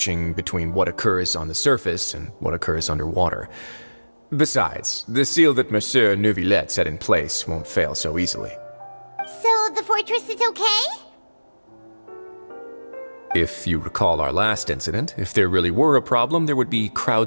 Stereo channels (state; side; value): inverted; both; correlation -1.00